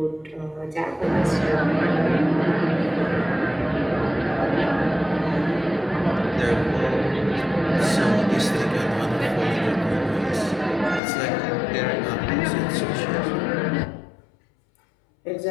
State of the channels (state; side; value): drops out; right; at 11.0 s